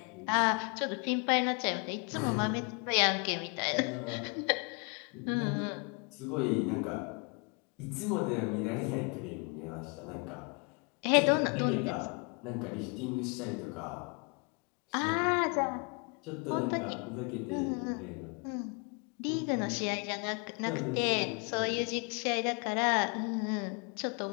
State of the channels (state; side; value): quieter; right; 33.8 dB